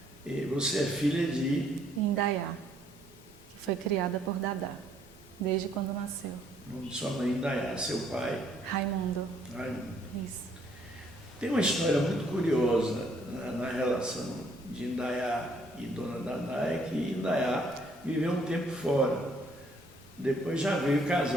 E você é filha de? Indaiá, que foi criada por Dadá, desde quando nasceu. O nome de sua mãe, Indaiá, seu pai? Raimundo. Raimundo. Isso. Tem uma história muito curiosa na relação de Indaiá e Dona Dadá, é que Indaiá viveu um tempo fora. Depois já veio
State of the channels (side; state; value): both; normal; correlation 0.66